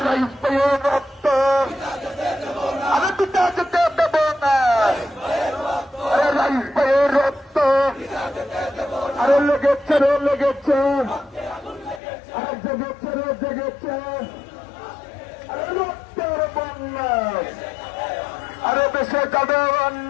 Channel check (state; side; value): drops out; right; at 12.0 s